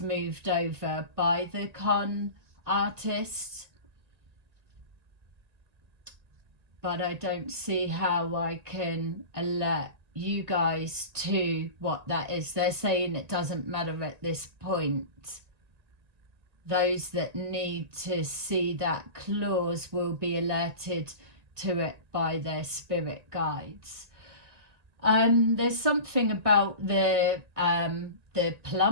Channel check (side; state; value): left; late; 1.8 ms